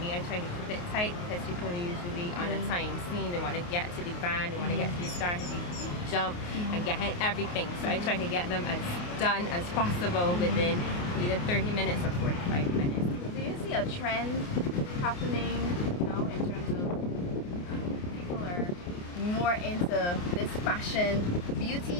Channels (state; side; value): late; right; 28 ms